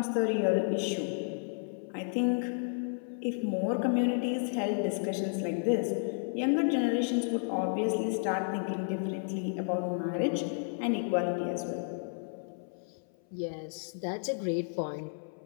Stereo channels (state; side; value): silent; right; 56 dB below the other